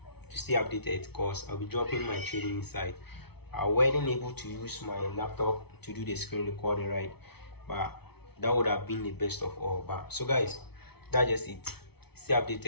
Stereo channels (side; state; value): right; late; 0.98 ms